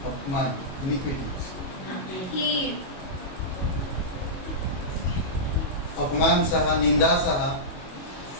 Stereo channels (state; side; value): late; right; 22 ms